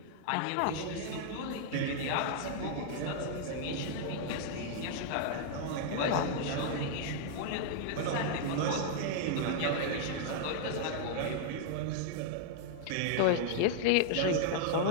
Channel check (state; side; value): different; both; correlation -0.01